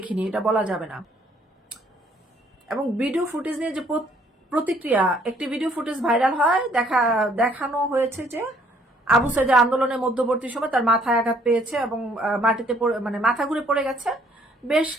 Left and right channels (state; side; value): normal; both; correlation 0.63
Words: এটা বলা যাবে না। এবং ভিডিও ফুটেজ নিয়ে যে প্রতিক্রিয়া, একটি ভিডিও ফুটেজ ভাইরাল হয়, দেখানো হয়েছে যে আবু সাঈদের আন্দোলনের মধ্যবর্তী সময় তার মাথায় আঘাত পেয়েছে এবং মাটিতে মাথা ঘুরে পড়ে গেছে। বেশ